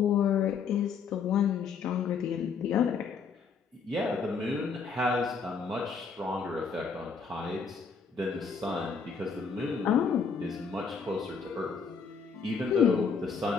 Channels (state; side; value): quieter; right; 5.6 dB